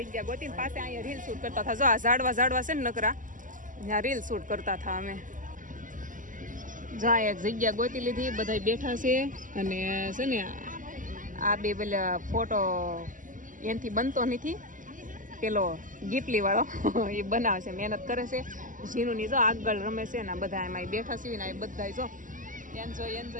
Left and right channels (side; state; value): left; late; 0.38 ms